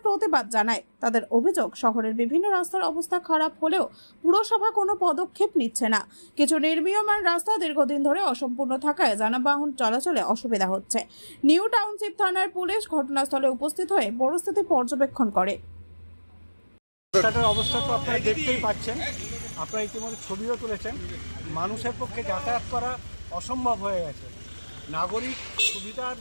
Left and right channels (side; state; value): both; inverted; correlation -1.00